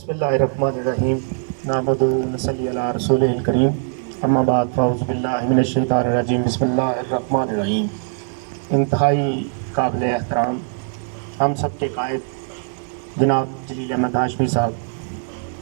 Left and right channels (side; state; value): left; silent; digital silence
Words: اللہ الرحمن الرحیم نحمدہ و نصلی علی رسولہ الکریم اما بعد فاعوذ باللہ من الشیطان الرجیم بسم اللہ الرحمن الرحیم۔ انتہائی قابل احترام ہم سب کے قائد جناب جلیل احمد ہاشمی صاحب،